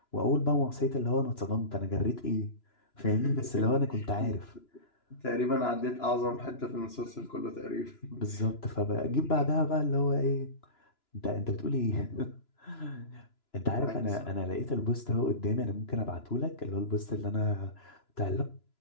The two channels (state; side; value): late; right; 2.9 ms